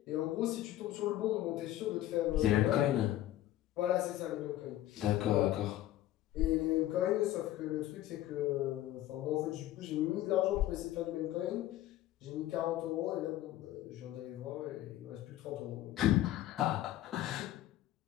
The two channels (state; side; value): quieter; right; 14.1 dB